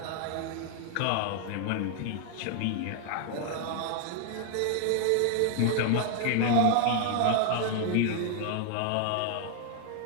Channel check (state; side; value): different; both; correlation 0.00